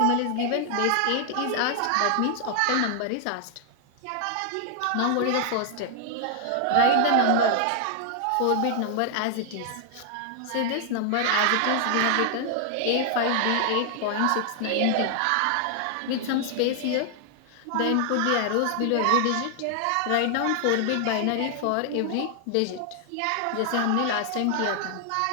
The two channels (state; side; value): different; both; correlation 0.00